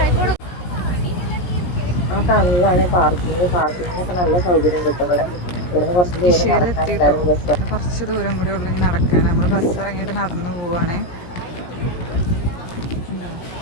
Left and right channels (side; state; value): right; late; 17 ms